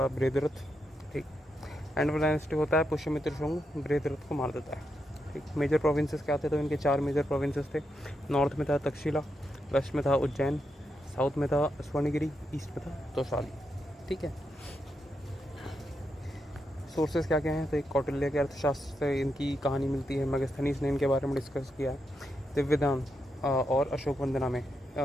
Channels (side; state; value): both; normal; correlation 0.84